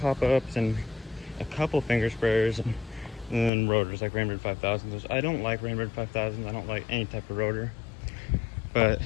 and a couple finger sprayers and then rotors like Rainbird 5000s. Which I don't like Rainbird 5000s. I don't like any type of rotor. But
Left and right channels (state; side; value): drops out; right; at 3.5 s